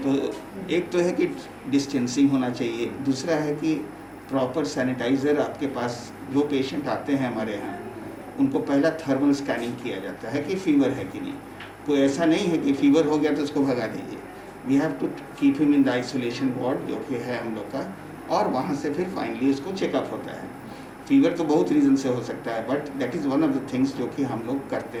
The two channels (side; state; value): both; identical; correlation 1.00